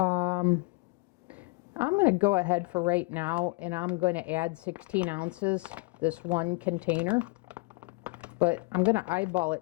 going to go ahead for right now, and I'm going to add 16 ounces, this one container. But I'm going to eyeball it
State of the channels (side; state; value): right; quieter; 26.9 dB